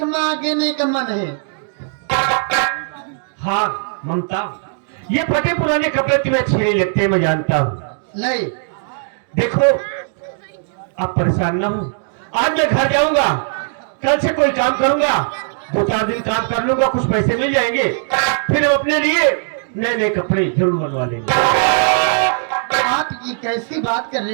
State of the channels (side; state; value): left; silent; digital silence